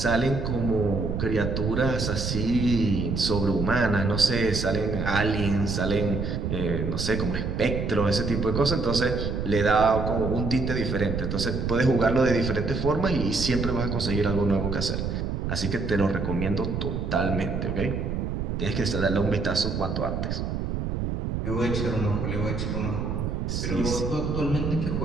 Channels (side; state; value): right; noise; rumble, 2 dB below the sound